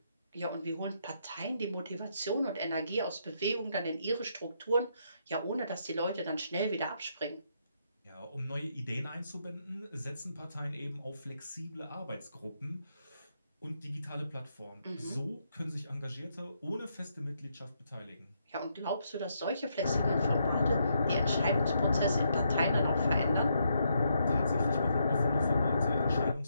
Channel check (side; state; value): both; inverted; correlation -0.77